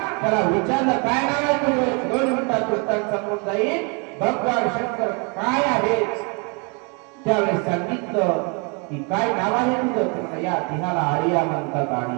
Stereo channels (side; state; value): left; quieter; 33.6 dB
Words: त्याला विचारलं काय नाव आहे तुझं. 2 मिनिटात उत्तर समोर जाईल भगवान शंकर काय आहे. त्यावेळेस सांगितलं की काय नाव आहे तुझं. या तिहाला आर्या म्हणतात,